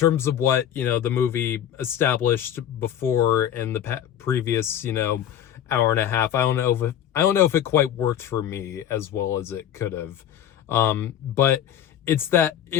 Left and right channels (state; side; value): quieter; right; 10.2 dB